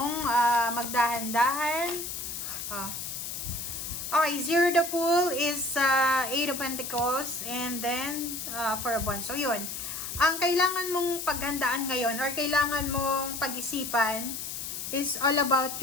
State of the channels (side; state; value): left; noise; hiss, 6 dB below the sound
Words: magdahan-dahan? Okay, Zero the Fool is Eight of Pentacles and then for a bond. So, yun. Ang kailangan mong paghandaan ngayon or kailangan mong pag-isipan is all about